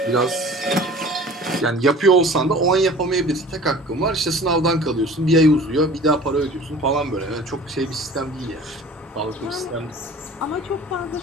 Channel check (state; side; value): normal; both; correlation 0.44